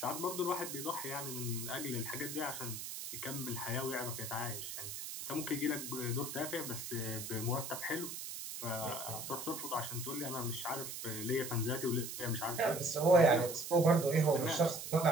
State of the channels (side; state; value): right; noise; hiss, 7 dB below the sound